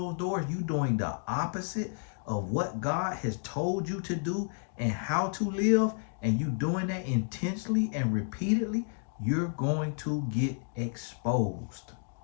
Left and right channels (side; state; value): right; silent; 57 dB below the other